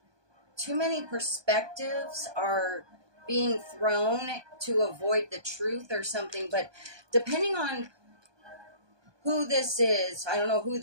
too many perspectives are being thrown to avoid the truth or something. But depending on who this is, I don't know who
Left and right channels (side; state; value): left; late; 1.2 ms